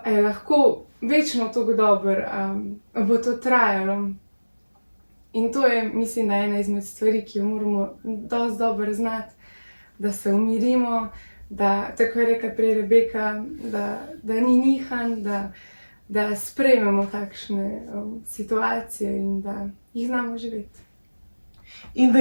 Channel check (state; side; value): inverted; both; correlation -1.00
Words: lahko večno tako dobro, a bo to trajalo. In to je, mislim, da ena izmed stvari, ki jo moramo dosti dobro znati, da se umirimo, da, tako je rekla prej Rebeka, da ni nihanj, da sprejmemo takšne situacije in da jih znamo živeti. In da